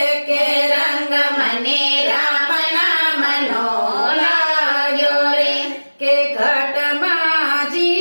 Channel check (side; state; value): both; inverted; correlation -1.00